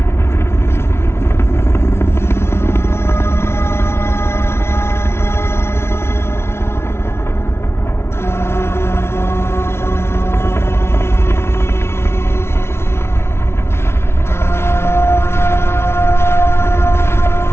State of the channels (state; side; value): late; right; 0.12 ms